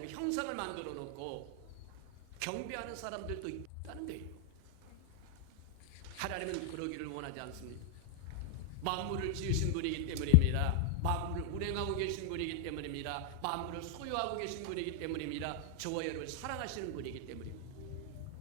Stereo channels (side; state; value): both; different; correlation -0.01